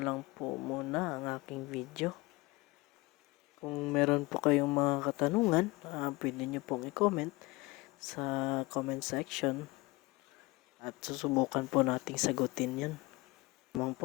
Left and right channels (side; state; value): right; quieter; 22.9 dB